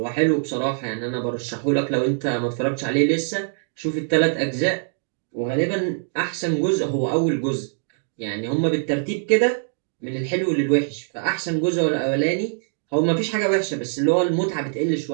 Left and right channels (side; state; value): left; silent; digital silence